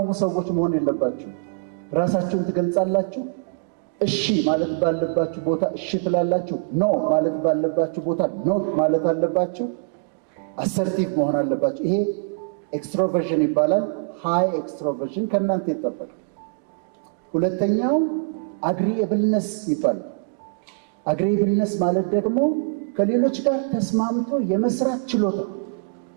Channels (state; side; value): quieter; left; 37.5 dB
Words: ሰዎች መሆን የለባችሁ። ራሳችሁን ትገልጻላችሁ። እሺ ማለት ባለባችሁ ቦታ እሺ ትላላችሁ። ኖ ማለት ባለባችሁ ቦታ ኖ ማለት አለባችሁ። አሰርቲቭ መሆን አለባችሁ። ይሄ ኤክስትሮቨርሽን ይባላል። ሃይ ኤክስትሮቨርሽን ከእናንተ ይጠበቃል። ሁለተኛው አግሪኤብልነስ ይባላል። አግሪኤብልነስ ማለት ደግሞ ከሌሎች ጋር ተስማምቶ የመስራት ችሎታ።